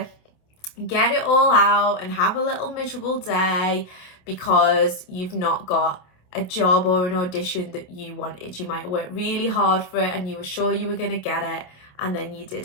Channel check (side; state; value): right; late; 27 ms